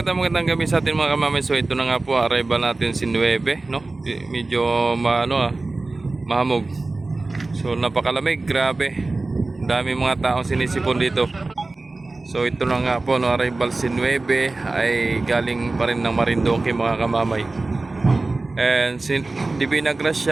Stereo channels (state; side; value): quieter; left; 3.3 dB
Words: gabi sa atin mga kamamay. So ito na nga po, arrival natin si 9, no? Medyo mahamog. So napakalamig, grabe. Dami mga taong sinisipon dito. So ito na nga po, no, arrival si 9 ay galing pa rin ng Marinduque mga kamamay. And si Divina